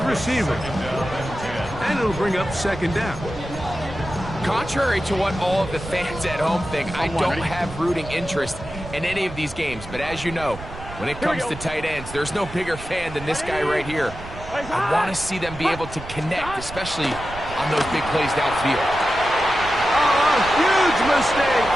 receiver. And it'll bring up 2nd down. Contrary to what all of the fans at home think, I don't have rooting interest in any of these games. But as you know, when it comes to tight ends, there's no bigger fan than this guy right here. I want to see them be able to connect, especially on those big plays downfield. Oh, huge mistake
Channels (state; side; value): noise; right; rumble, 13 dB below the sound